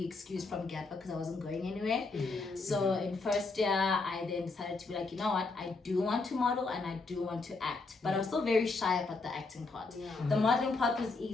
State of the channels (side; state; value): right; quieter; 3.8 dB